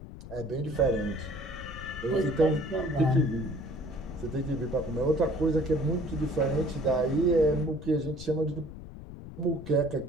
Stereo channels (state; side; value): noise; left; rumble, 13 dB below the sound